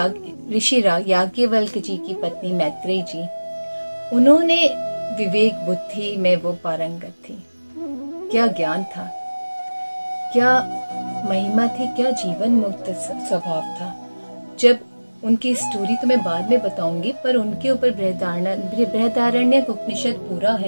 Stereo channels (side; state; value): both; inverted; correlation -1.00